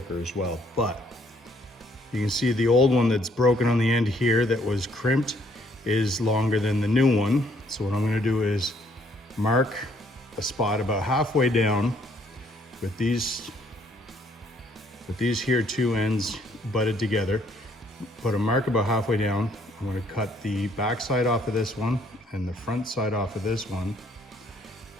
as well, but you can see the old one that's broken on the end here that was crimped is longer than the new one. So what I'm going to do is mark a spot about halfway down with these here two ends butted together. Put a mark about halfway down. I'm going to cut the back side off of this one and the front side off of this one,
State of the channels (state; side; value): normal; both; correlation 0.66